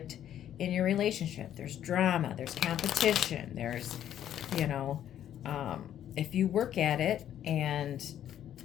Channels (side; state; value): right; quieter; 10.8 dB